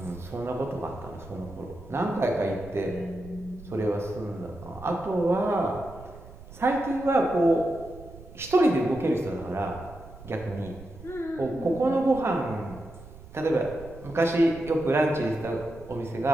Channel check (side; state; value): right; noise; rumble, 17 dB below the sound